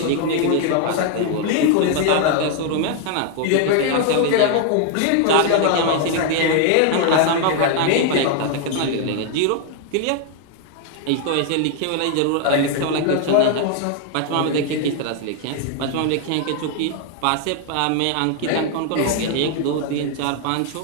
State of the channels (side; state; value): both; different; correlation 0.00